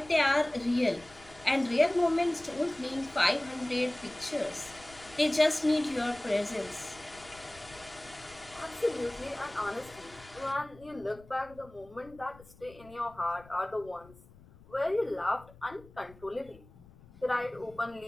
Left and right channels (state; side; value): noise; left; rumble, 23 dB below the sound